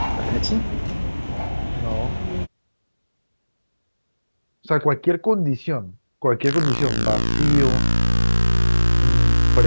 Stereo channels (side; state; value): both; inverted; correlation -1.00